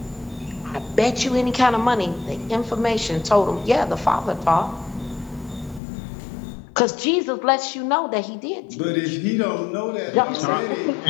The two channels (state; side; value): drops out; right; at 5.8 s